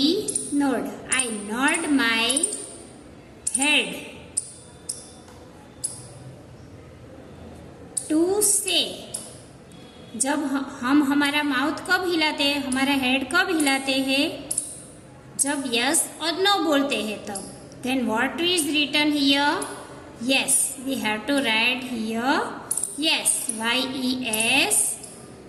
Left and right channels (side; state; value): both; identical; correlation 1.00